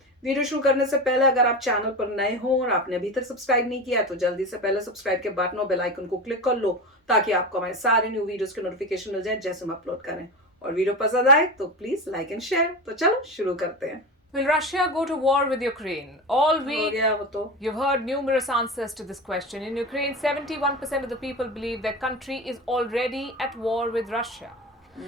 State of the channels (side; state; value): both; normal; correlation 0.24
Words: वीडियो शुरू करने से पहले अगर आप चैनल पर नए हो और आपने अभी तक सब्सक्राइब नहीं किया तो जल्दी से पहले सब्सक्राइब के बटन और बेल आइकन को क्लिक कर लो, ताकि आपको हमारे सारे न्यू वीडियोस के नोटिफिकेशन मिल जाए जैसे हम अपलोड करें। और वीडियो पसंद आए तो प्लीज लाइक एंड शेयर। तो चलो शुरू करते हैं। Will Russia go to war with Ukraine? All हो week, गया वो तो। you've heard numerous answers to this question. In Ukraine, 71% of the people believe their country is already at war with Russia.